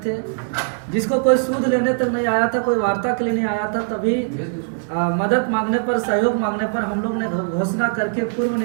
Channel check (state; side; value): silent; left; 65 dB below the other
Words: थे, जिसको कोई सूद लेने तक नहीं आया था, कोई वार्ता के लिए नहीं आया था, तभी मदद मांगने पर, सहयोग मांगने पर हम लोग ने घोषणा करके पूर्व